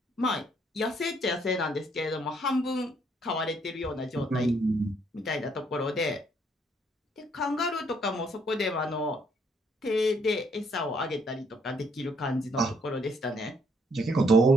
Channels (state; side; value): normal; both; correlation 0.68